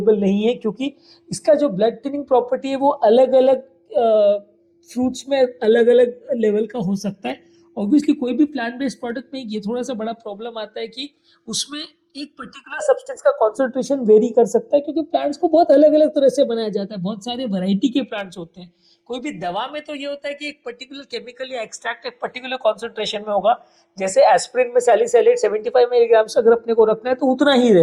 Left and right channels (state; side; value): identical; both; correlation 1.00